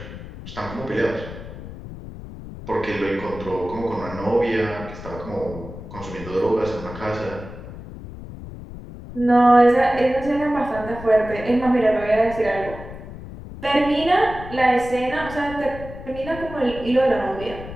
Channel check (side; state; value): left; noise; rumble, 13 dB below the sound